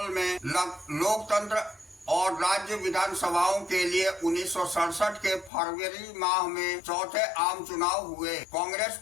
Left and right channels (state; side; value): drops out; right; at 5.5 s